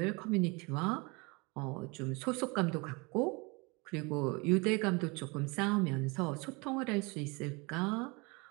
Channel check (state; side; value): quieter; left; 27.9 dB